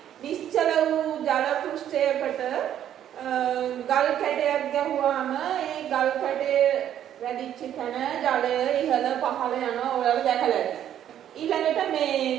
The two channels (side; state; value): left; quieter; 10.6 dB